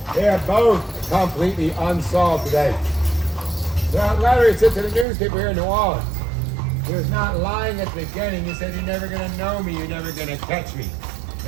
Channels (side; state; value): left; drops out; at 5.1 s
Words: they are both completely unsolved today. That letter he sent to the newspaper here in New Orleans. He was not lying at the beginning. He said, you're never going to know me, you're never going to catch me.